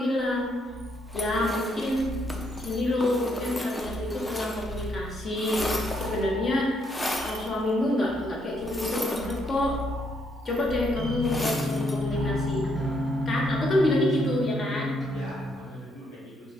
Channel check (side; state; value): both; normal; correlation 0.74